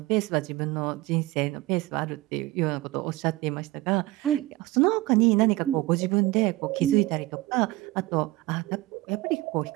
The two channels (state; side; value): quieter; left; 19.0 dB